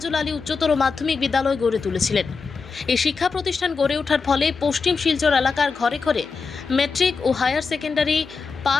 আলী উচ্চতর মাধ্যমিক বিদ্যালয় গড়ে তুলেছিলেন। এই শিক্ষা প্রতিষ্ঠান গড়ে ওঠার ফলে পশ্চিম শিলচর এলাকার ঘরে ঘরে ম্যাট্রিক ও হায়ার সেকেন্ডারি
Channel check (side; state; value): right; quieter; 4.9 dB